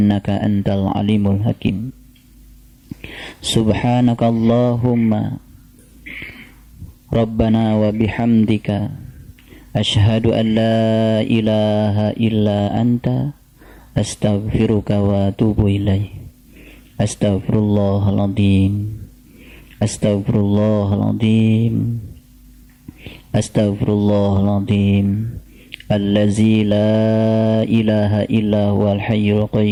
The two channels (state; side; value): identical; both; correlation 1.00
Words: antal alimul hakim. Subhanaka Allahumma Rabbana wa bihamdika asyhadu an la ilaha illa anta astaghfiruka wa atubu ilaik. Astaghfirullahaladzim, astaghfirullahaladzim, astaghfirullahaladzim, allazi la ilaha illa huwal hayyul